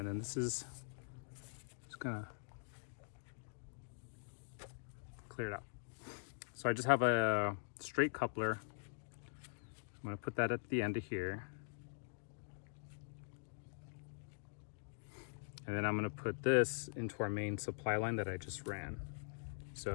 then this is just gonna clear it out. So I just have a straight coupler. I'm gonna put that at the end of here. And then I'm gonna put this into our main supply line that I just ran.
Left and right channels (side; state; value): right; silent; digital silence